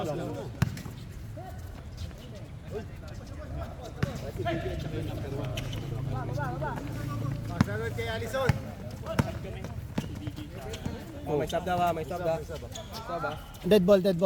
Magsalot kay Alison. Oh, may sub daw ha. Sub ha. Dead ball.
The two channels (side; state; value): both; identical; correlation 1.00